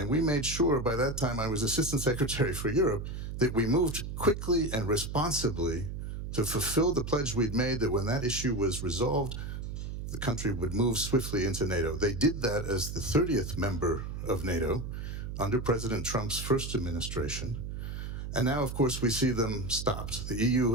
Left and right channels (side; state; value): right; noise; hum, 6 dB below the sound